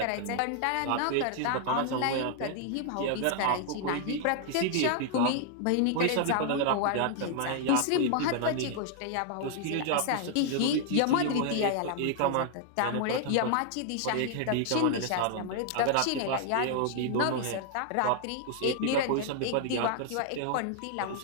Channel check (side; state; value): both; different; correlation 0.00